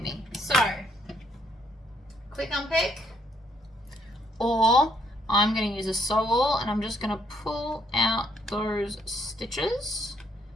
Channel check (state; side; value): normal; both; correlation 0.71